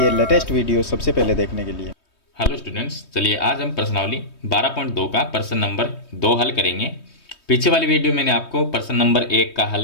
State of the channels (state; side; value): late; right; 3.2 ms